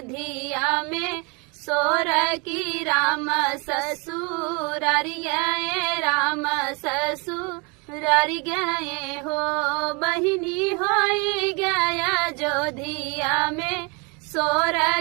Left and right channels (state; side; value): quieter; left; 30.8 dB